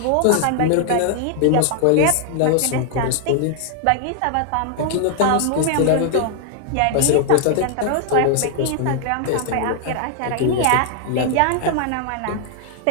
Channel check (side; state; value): both; different; correlation 0.00